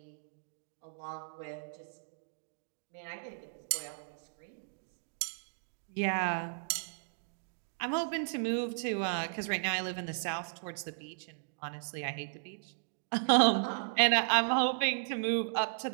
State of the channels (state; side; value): silent; left; digital silence